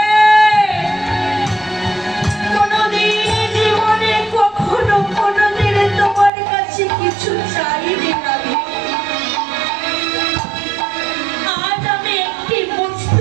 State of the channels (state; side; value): drops out; left; at 6.3 s